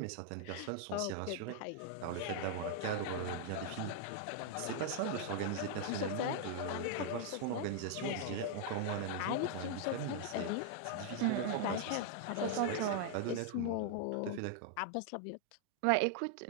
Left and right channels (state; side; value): different; both; correlation 0.00